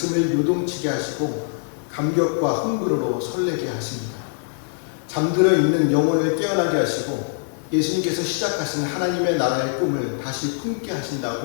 요동치게 하시고 감격과 흥분으로 설레게 하십니다. 잠들어 있는 영혼을 깨어나게 하시고 예수님께서 시작하신 하나님의 나라의 꿈을 다시 품게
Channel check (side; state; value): right; silent; 63 dB below the other